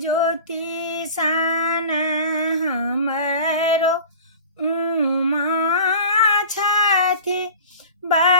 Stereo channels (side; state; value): both; inverted; correlation -0.39